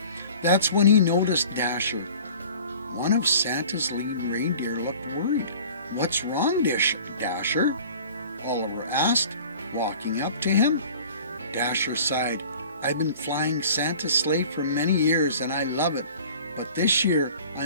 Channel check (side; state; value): both; inverted; correlation -0.45